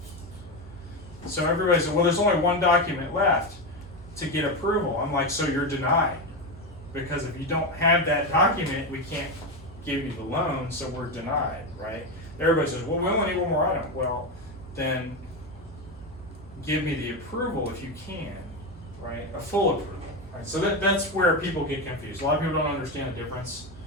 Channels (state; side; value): normal; both; correlation 0.14